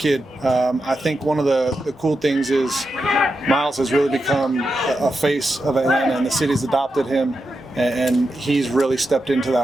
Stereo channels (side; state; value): both; normal; correlation 0.88